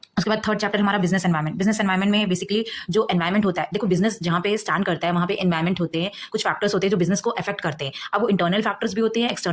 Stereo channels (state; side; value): identical; both; correlation 1.00